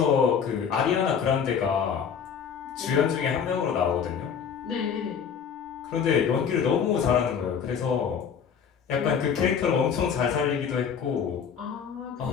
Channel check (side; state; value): right; quieter; 7.2 dB